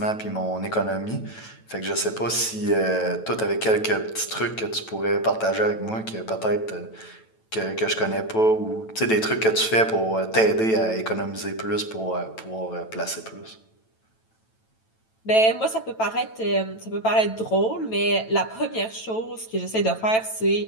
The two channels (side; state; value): right; late; 9.1 ms